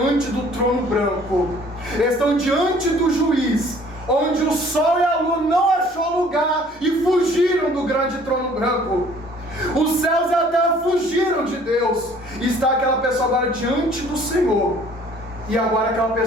do trono branco, estão diante do juiz, onde o sol e a lua não achou lugar e fugiram do grande trono branco. Os céus e a terra fugiram de Deus. E está aquela pessoa agora diante do Senhor. E agora aquela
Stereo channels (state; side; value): normal; both; correlation 0.55